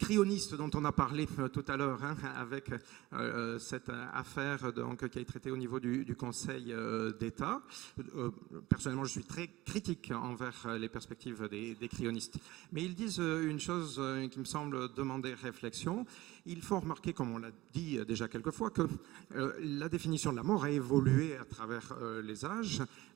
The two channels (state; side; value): quieter; left; 18.4 dB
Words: dont on a parlé tout à l'heure, avec cette affaire donc, qui a été traitée au niveau du Conseil d'État, personnellement je suis très critique envers les perspectives des cryonistes. Mais ils disent une chose qui me semble demander réflexion. Il faut remarquer, comme on l'a dit déjà quelques fois, que la définition de la mort a évolué à travers les âges.